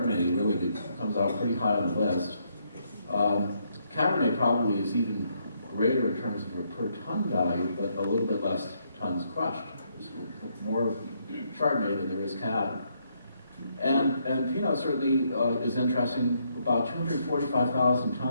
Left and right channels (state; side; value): inverted; both; correlation -0.74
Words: really comes out pretty high on the list. Cabernet probably is even greater in terms of a per ton value, but a little bit less tons crushed. There's more Chardonnay than there is Cab. And Pinot certainly is interesting, about 245,000